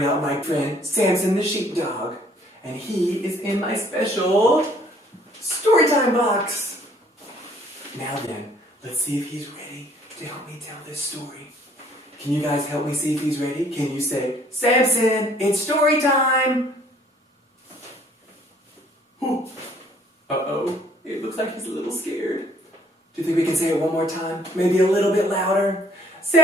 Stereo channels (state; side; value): normal; both; correlation 0.60